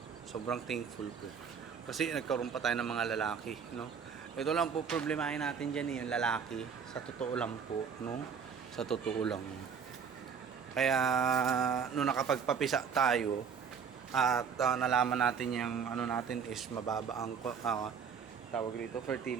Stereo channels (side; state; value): left; quieter; 6.7 dB